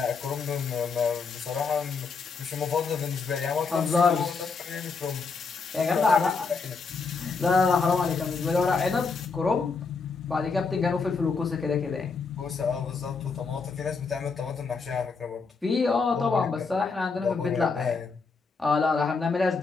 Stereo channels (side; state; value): right; quieter; 4.8 dB